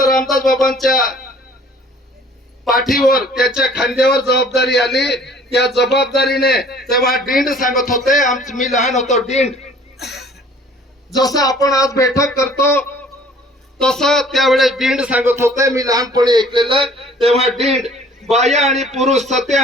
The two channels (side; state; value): both; normal; correlation 0.53